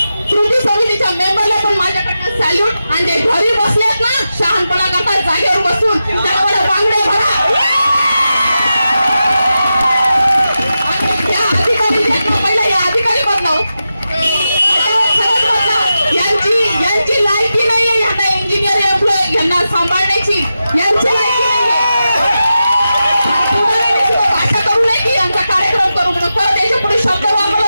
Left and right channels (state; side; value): inverted; both; correlation -0.91